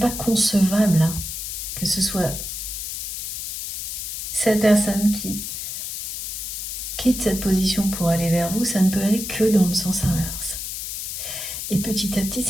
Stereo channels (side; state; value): left; noise; hiss, 5 dB below the sound